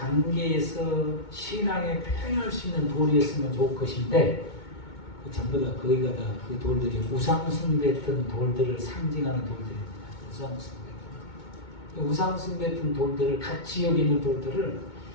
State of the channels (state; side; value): late; right; 2.2 ms